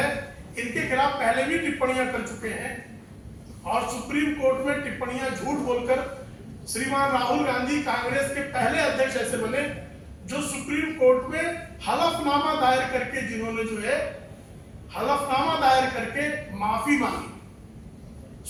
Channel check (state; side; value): identical; both; correlation 1.00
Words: इनके खिलाफ पहले भी टिप्पणियां कर चुके हैं, और सुप्रीम कोर्ट में टिप्पणियां झूठ बोलकर श्रीमान राहुल गांधी कांग्रेस के पहले अध्यक्ष ऐसे बने जो सुप्रीम कोर्ट में हलफनामा दायर करके, जिन्होंने जो है हलफनामा दायर करके माफी मांगी।